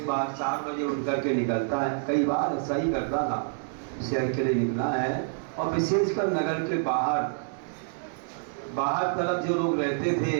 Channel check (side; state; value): left; silent; 60 dB below the other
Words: बार 4 बजे उठ करके निकलता है, कई बार ऐसा ही करता था, शहर के लिए निकला है। और विशेषकर नगर के बाहर तरफ जो लोग रहते थे,